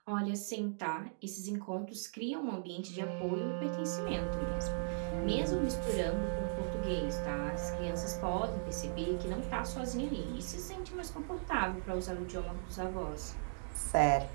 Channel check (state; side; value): silent; left; digital silence